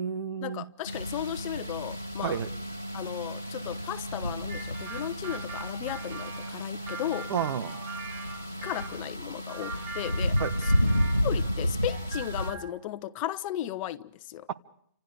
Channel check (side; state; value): both; inverted; correlation -0.64